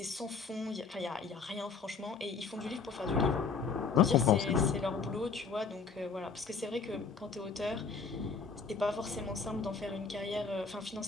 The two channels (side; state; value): right; quieter; 5.2 dB